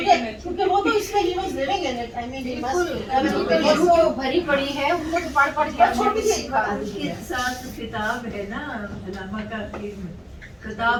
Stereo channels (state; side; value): identical; both; correlation 1.00